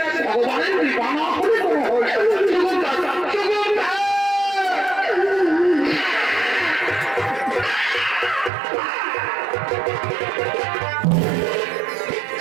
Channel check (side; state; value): left; drops out; at 8.5 s